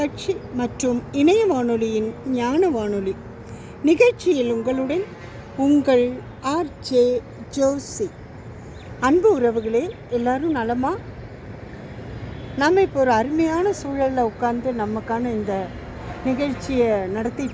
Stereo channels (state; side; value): identical; both; correlation 1.00